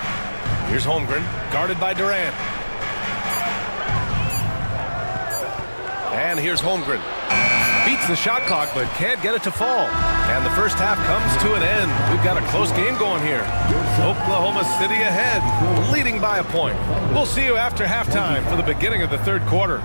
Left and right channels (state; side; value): inverted; both; correlation -1.00